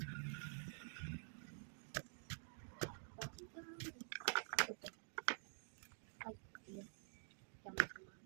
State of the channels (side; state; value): left; silent; digital silence